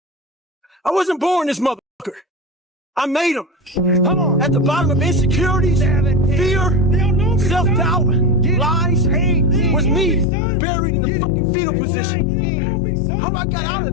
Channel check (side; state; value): right; drops out; at 10.2 s